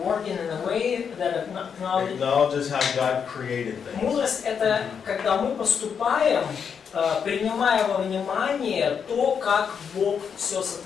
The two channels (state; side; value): quieter; right; 6.9 dB